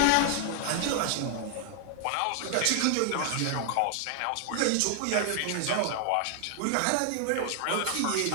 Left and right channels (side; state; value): both; different; correlation 0.00